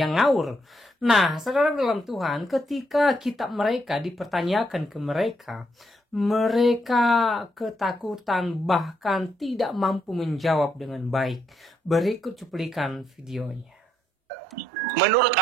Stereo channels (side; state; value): both; normal; correlation 0.76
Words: ngawur. Nah, saudara dalam Tuhan, ketika kitab mereka dipertanyakan ke mereka ketakutan bahkan tidak mampu menjawab dengan baik. Berikut cuplikan videonya. Menurut